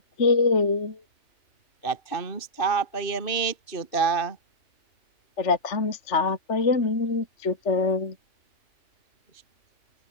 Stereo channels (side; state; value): right; late; 2.6 ms